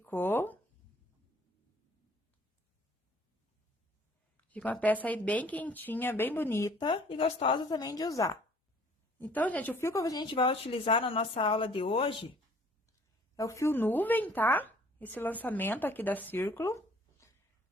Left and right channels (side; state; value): both; normal; correlation 0.57